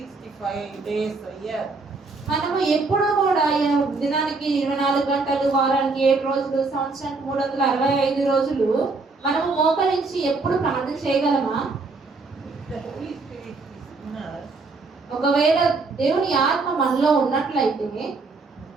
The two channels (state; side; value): quieter; left; 3.9 dB